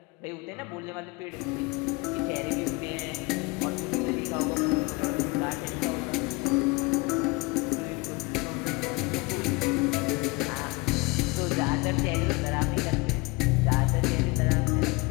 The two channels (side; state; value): right; quieter; 25.5 dB